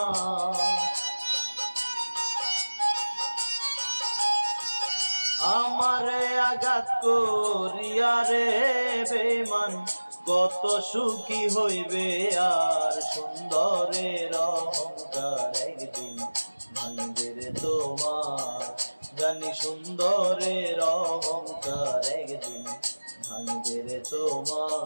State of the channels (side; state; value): both; inverted; correlation -1.00